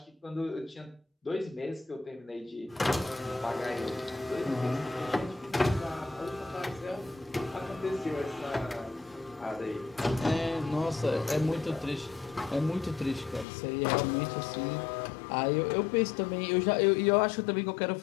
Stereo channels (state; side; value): drops out; right; at 13.5 s